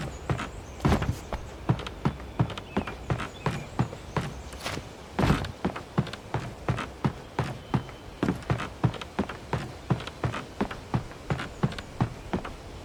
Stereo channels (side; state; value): both; identical; correlation 1.00